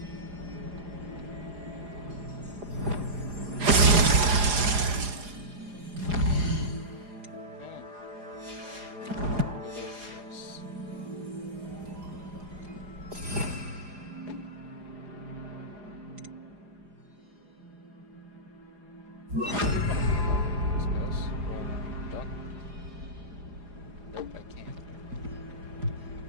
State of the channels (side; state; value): left; late; 4.9 ms